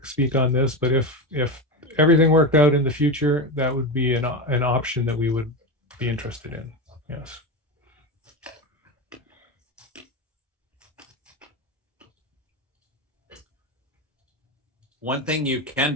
speak on this, but if everything worked out in the future, that would be an option that we would be interested in. Yes. One thing you can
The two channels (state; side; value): normal; both; correlation 0.17